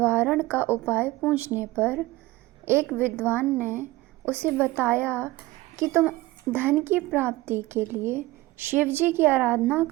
का उपाय पूछने पर एक विद्वान ने उसे बताया कि तुम धन की प्राप्ति के लिए शिव जी की आराधना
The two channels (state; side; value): quieter; left; 19.0 dB